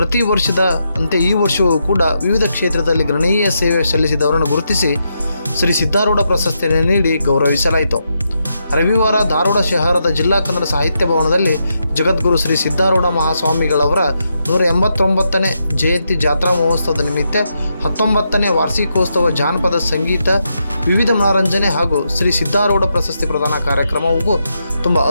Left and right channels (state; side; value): inverted; both; correlation -0.83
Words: ವರ್ಷದ ಅಂತೆ ಈ ವರ್ಷವೂ ಕೂಡ ವಿವಿಧ ಕ್ಷೇತ್ರದಲ್ಲಿ ಗಣನೀಯ ಸೇವೆ ಸಲ್ಲಿಸಿದವರನ್ನು ಗುರುತಿಸಿ ಶ್ರೀ ಸಿದ್ಧಾರೂಢ ಪ್ರಶಸ್ತಿಯನ್ನು ನೀಡಿ ಗೌರವಿಸಲಾಯಿತು. ರವಿವಾರ ಧಾರವಾಡ ಶಹರದ ಜಿಲ್ಲಾ ಕನ್ನಡ ಸಾಹಿತ್ಯ ಭವನದಲ್ಲಿ ಜಗದ್ಗುರು ಶ್ರೀ ಸಿದ್ಧಾರೂಢ ಮಹಾಸ್ವಾಮಿಗಳವರ 189ನೇ ಜಯಂತಿ ಜಾತ್ರಾ ಮಹೋತ್ಸವದ ನಿಮಿತ್ತ 19ನೇ ವಾರ್ಷಿಕೋತ್ಸವ ಜಾನಪದ ಸಂಗೀತ ವಿವಿಧ ಮನರಂಜನೆ ಹಾಗೂ ಶ್ರೀ ಸಿದ್ಧಾರೂಢ ಪ್ರಶಸ್ತಿ ಪ್ರದಾನ ಕಾರ್ಯಕ್ರಮವು ತುಂಬ